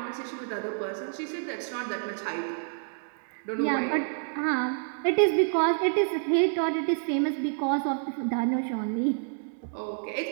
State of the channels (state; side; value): silent; left; digital silence